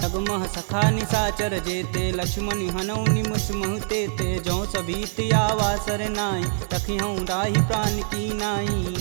जगमह सखा निशाचर जेते, लक्ष्मण हनौ निमस महते ते। जौ सभीत आवा सरनाई, तखिहूँ राहि प्राण की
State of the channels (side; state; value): left; silent; 62 dB below the other